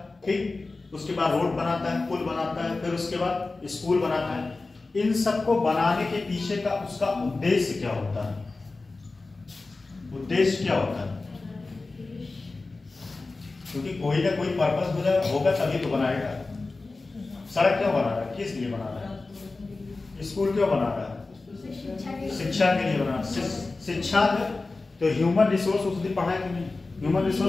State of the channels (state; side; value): quieter; right; 3.5 dB